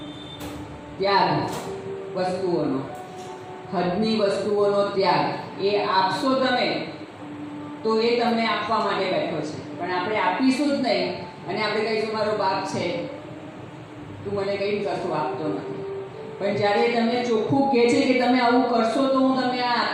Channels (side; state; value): both; identical; correlation 1.00